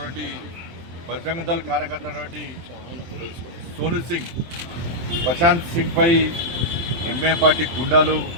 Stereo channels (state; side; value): late; left; 23 ms